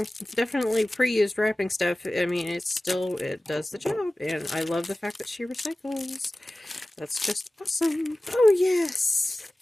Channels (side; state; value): both; normal; correlation 0.97